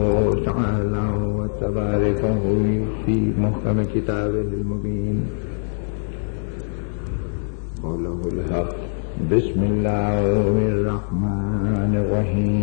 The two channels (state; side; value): silent; right; digital silence